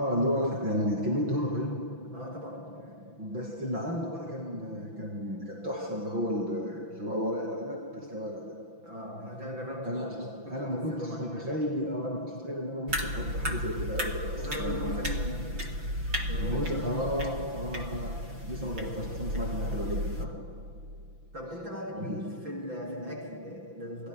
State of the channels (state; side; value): late; left; 5.9 ms